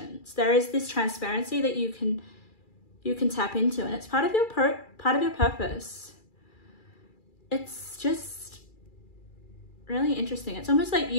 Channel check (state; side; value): late; right; 2.4 ms